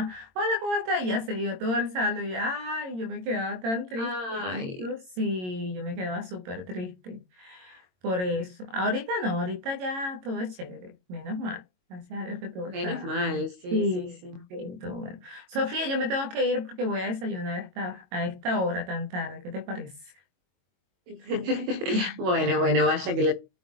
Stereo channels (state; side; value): late; left; 22 ms